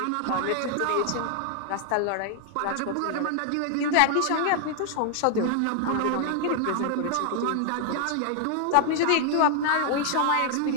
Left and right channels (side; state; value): both; different; correlation 0.00